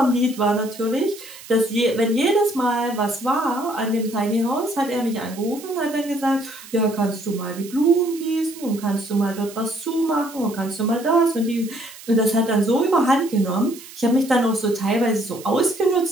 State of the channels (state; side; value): noise; right; hiss, 17 dB below the sound